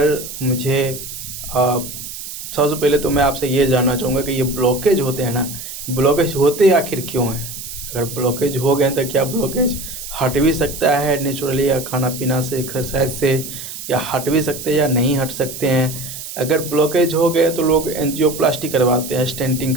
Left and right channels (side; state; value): right; noise; hiss, 10 dB below the sound